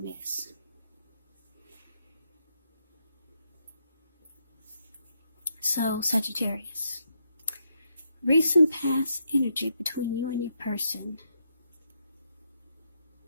is. So, Sagittarius, recent past energy between you and your person.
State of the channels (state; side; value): inverted; both; correlation -0.79